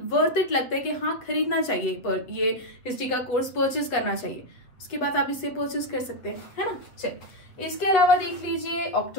वर्थ इट लगता है कि हाँ खरीदना चाहिए, पर ये हिस्ट्री का कोर्स परचेज करना चाहिए, उसके बाद आप इसे परचेज कर सकते हैं, है ना। चलिए इसके अलावा देख लीजिए,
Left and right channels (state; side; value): late; right; 7.7 ms